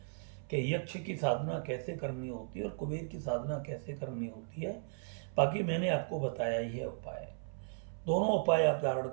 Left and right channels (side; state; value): left; silent; 54 dB below the other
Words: कि यक्ष की साधना कैसे करनी होती है और कुबेर की साधना कैसे करनी होती है। बाकी मैंने आपको बताया ही है उपाय। दोनों उपाय आप धारण